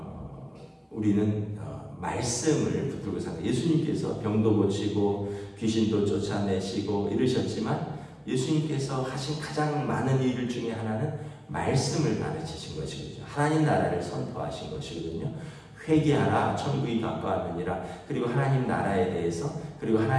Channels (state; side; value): identical; both; correlation 1.00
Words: 우리는 말씀을 붙들고 삽니다. 예수님께서 병도 고치고 귀신도 쫓아내시고 이러셨지만 예수님께서 하신 가장 많은 일 중에 하나는 말씀을 가르치신 것이거든요. 하나님 나라를 선포하신 것이거든요. 회개하라 천국이 가까웠느니라. 그리고 하나님 나라에 대해서 그리고